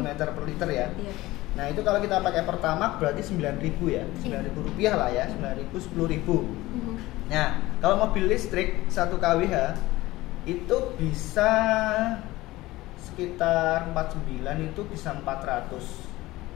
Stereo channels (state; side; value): quieter; right; 18.5 dB